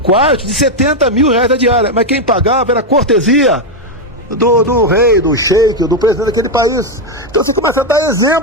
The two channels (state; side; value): normal; both; correlation 0.04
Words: de 70 mil reais a diária. Mas quem pagava era a cortesia do rei, do sheik, do presidente daquele país. Então você começa a dar